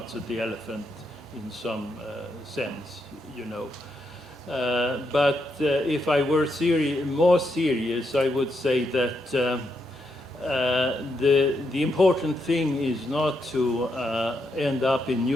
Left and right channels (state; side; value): normal; both; correlation 0.80